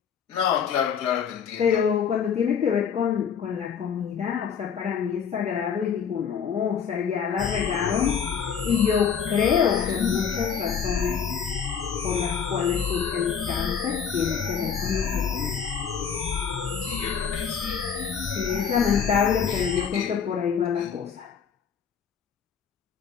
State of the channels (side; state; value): right; quieter; 7.0 dB